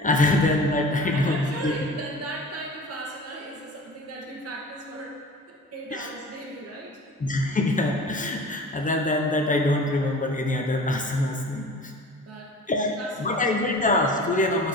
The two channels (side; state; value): both; normal; correlation 0.39